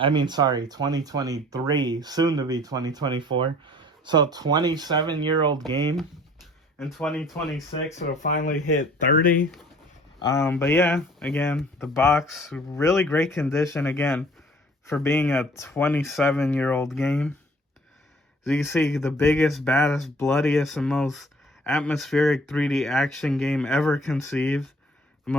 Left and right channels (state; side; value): normal; both; correlation 0.53